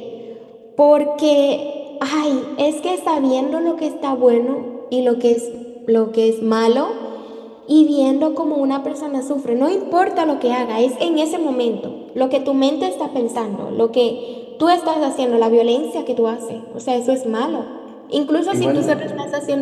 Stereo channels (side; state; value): both; identical; correlation 1.00